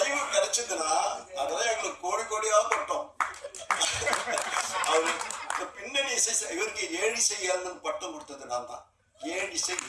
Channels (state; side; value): identical; both; correlation 1.00